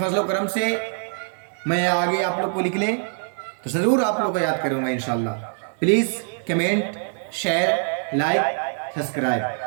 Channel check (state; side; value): silent; left; 63 dB below the other